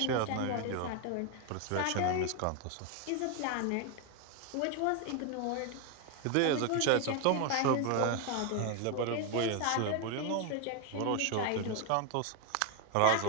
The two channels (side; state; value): both; different; correlation 0.01